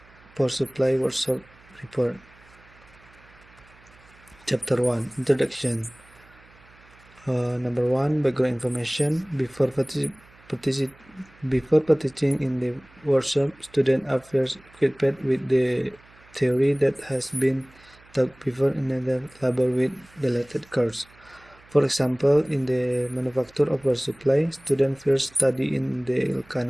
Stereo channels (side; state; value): right; noise; hum, 27 dB below the sound